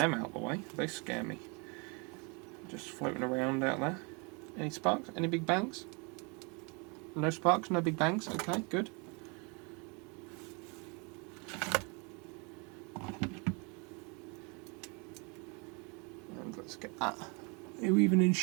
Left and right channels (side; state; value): left; quieter; 32.1 dB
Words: out of the way, they scare me. Just floating around out there. Any sparks? Any big bangs? No sparks, no big bangs, okay, good. And let's get that. Are you even in